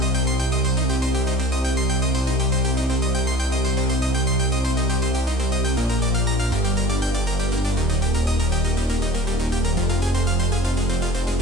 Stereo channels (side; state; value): both; normal; correlation 0.43